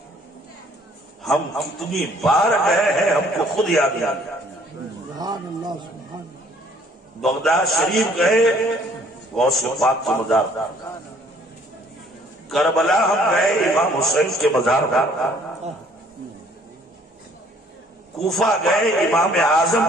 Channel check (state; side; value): normal; both; correlation 0.59